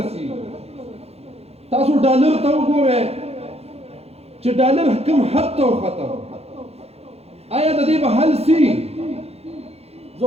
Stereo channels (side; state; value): left; late; 0.30 ms